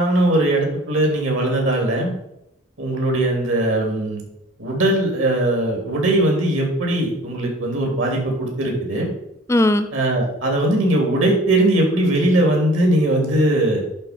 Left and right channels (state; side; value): normal; both; correlation 0.48